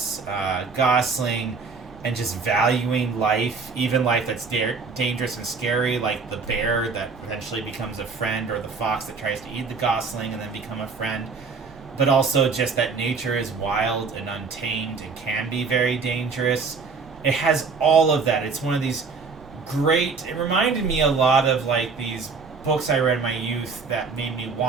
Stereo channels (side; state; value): left; quieter; 4.8 dB